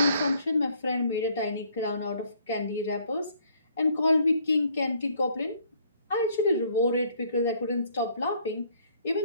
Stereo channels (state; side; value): inverted; both; correlation -0.64